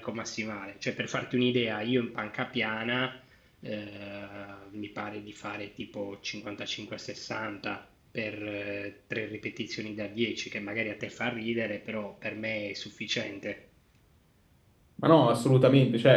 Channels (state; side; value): identical; both; correlation 1.00